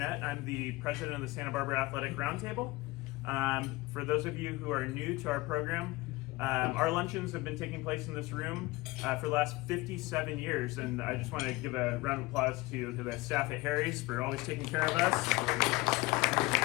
I'm the president of the Santa Barbara Athletic Roundtable. For those of you who are new to our program, our luncheons have been taking place in this room for the last 57 years, and I just want to give a round of applause to the staff at Harry's for always taking care of us.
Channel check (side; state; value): right; quieter; 21.7 dB